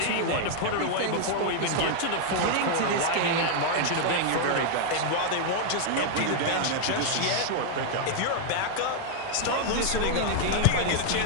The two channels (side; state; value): both; different; correlation 0.00